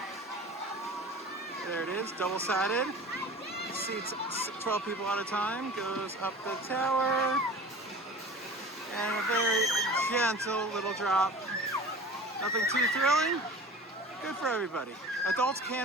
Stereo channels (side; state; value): both; normal; correlation 0.38